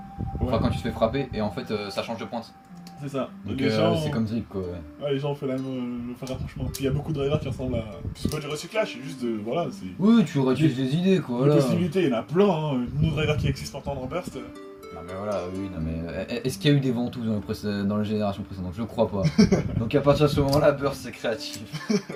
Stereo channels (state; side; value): identical; both; correlation 1.00